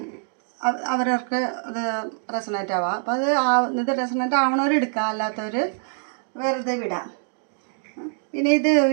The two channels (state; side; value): silent; left; 62 dB below the other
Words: അവരവർക്ക് ഇത് റെസണേറ്റ് ആവുക. അപ്പോൾ ഇത് റെസണേറ്റ് ആവണവരെടുക്കുക, അല്ലാത്തവർ വെറുതെ വിടാം. പിന്നെ ഇത്